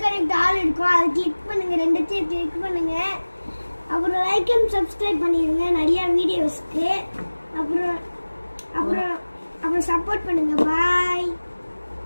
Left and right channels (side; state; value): both; inverted; correlation -1.00